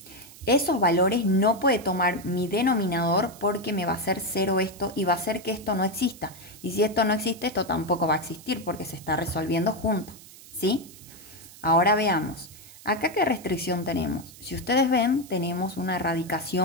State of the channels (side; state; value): right; noise; hiss, 19 dB below the sound